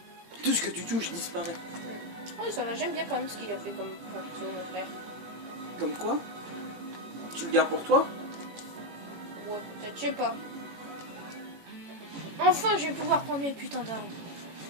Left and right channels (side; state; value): left; late; 18 ms